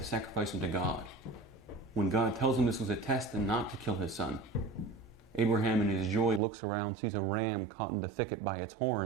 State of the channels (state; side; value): drops out; left; at 6.4 s